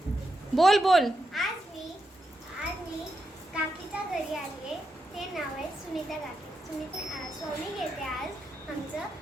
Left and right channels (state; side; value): normal; both; correlation 0.85